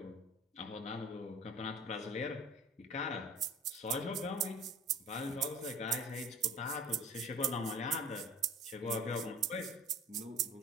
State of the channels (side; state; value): both; normal; correlation 0.43